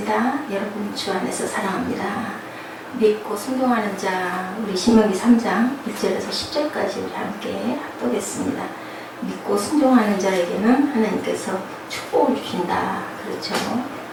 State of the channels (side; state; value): both; identical; correlation 1.00